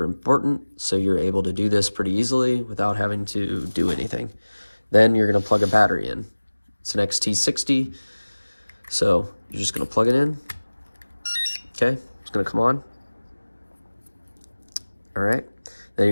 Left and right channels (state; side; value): inverted; both; correlation -1.00